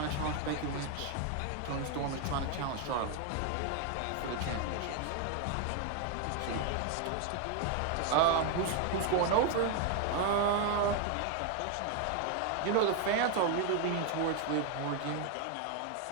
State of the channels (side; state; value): both; different; correlation 0.01